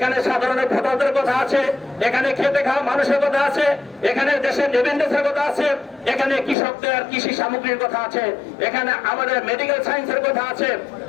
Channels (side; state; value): right; drops out; at 6.6 s